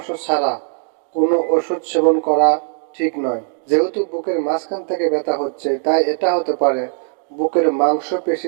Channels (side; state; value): left; silent; digital silence